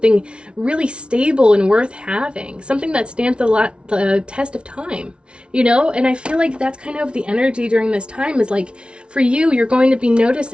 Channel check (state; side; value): late; left; 0.058 ms